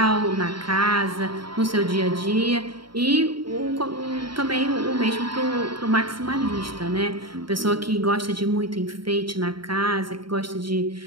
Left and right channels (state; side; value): late; left; 0.73 ms